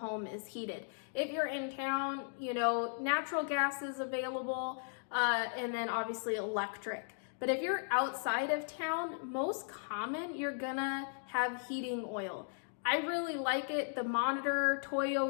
is heated. If you're in town, natural gas is available, and then obviously electric. But if you're outside of town, most common, you're gonna have heating oil. I really like it. The Monitor, Toyo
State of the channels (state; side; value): silent; right; digital silence